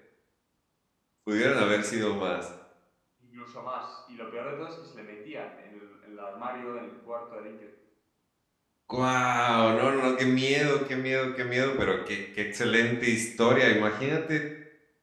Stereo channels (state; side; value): identical; both; correlation 1.00